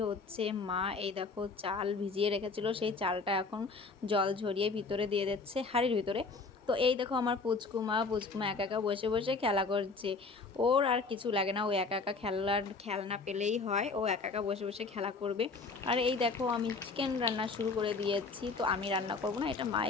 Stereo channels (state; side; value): quieter; right; 4.2 dB